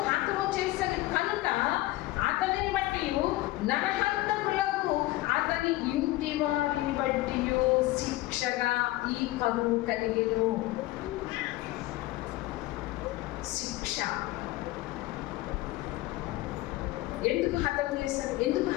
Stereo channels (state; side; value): quieter; right; 18.0 dB